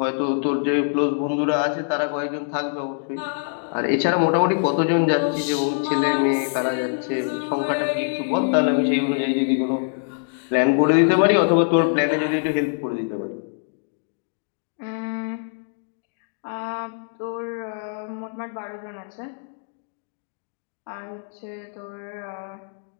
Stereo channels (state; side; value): silent; right; digital silence